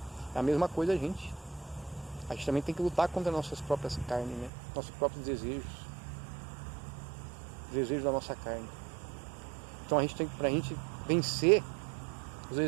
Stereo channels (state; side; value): drops out; left; at 4.5 s